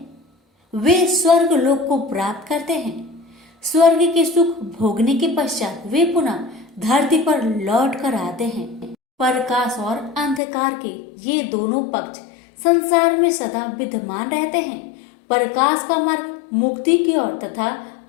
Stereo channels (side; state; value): right; drops out; at 10.4 s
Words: वे स्वर्ग लोक को प्राप्त करते हैं। स्वर्ग के सुख भोगने के पश्चात वे पुनः धरती पर लौट कर आते हैं। प्रकाश और अंधकार के ये दोनों पक्ष संसार में सदा विद्यमान रहते हैं। प्रकाश का मार्ग मुक्ति की ओर तथा